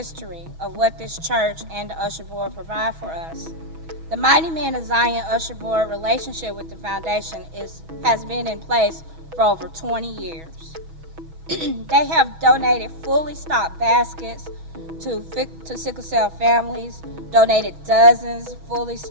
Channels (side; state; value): left; late; 6.2 ms